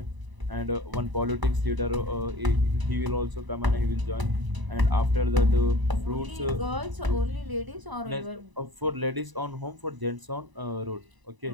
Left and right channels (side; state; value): left; late; 1.0 ms